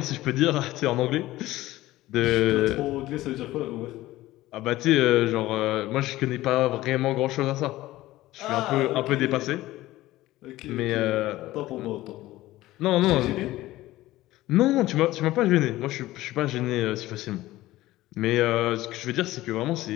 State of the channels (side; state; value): right; quieter; 16.7 dB